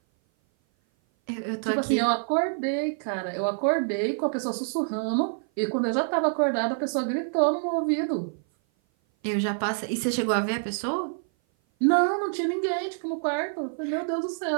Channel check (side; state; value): left; silent; 57 dB below the other